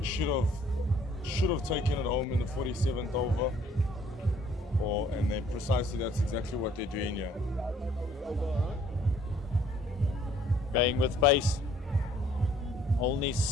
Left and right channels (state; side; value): normal; both; correlation 0.60